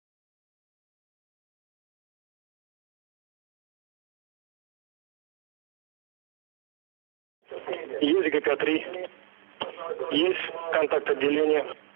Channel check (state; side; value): silent; left; 56 dB below the other